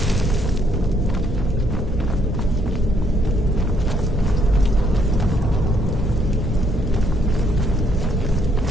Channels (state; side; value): normal; both; correlation 0.70